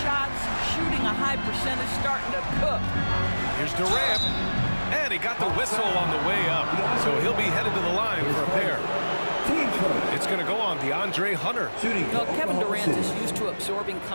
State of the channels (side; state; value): both; inverted; correlation -1.00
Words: shooting a high percentage, starting to cook. Here's Durant. And he got the whistle on the way up, so he'll be headed to the line for a pair. It's going to go on DeAndre Hunter. Well, Kevin Durant is used to absorbing